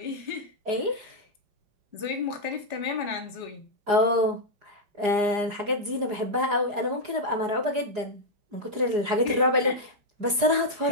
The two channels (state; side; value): late; left; 4.8 ms